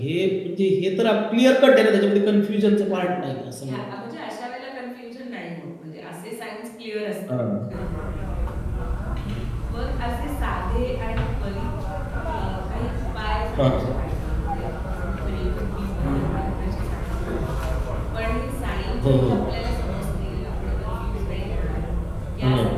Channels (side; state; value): both; identical; correlation 1.00